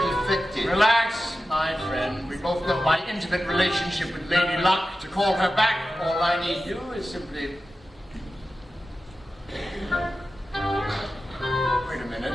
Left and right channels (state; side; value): normal; both; correlation 0.93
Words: effective. Relax, my friend. We both know my intimate relationship with Lady Luck. To call her back, all I need do is simply... Wait a minute.